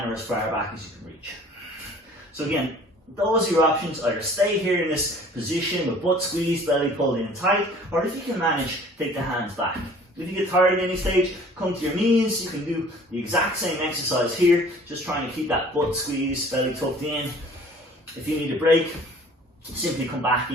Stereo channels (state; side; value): normal; both; correlation 0.51